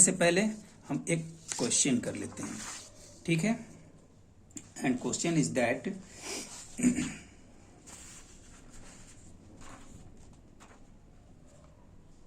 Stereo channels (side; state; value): both; identical; correlation 1.00